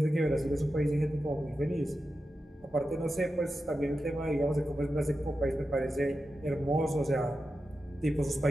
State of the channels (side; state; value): both; normal; correlation 0.91